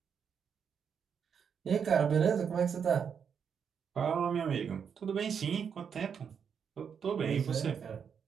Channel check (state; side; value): quieter; left; 7.1 dB